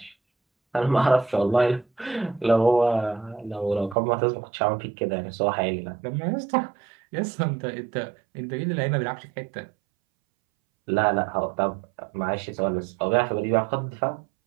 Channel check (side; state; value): left; drops out; at 4.0 s